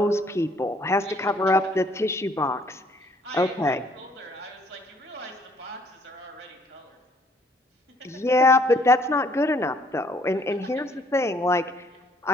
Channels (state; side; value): normal; both; correlation 0.63